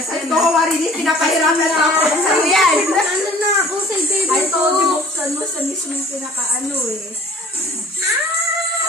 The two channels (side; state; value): both; normal; correlation 0.51